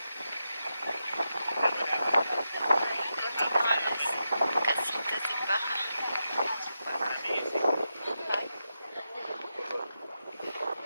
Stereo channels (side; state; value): both; inverted; correlation -0.88